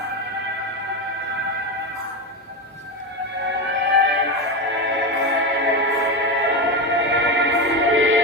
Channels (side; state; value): both; normal; correlation 0.15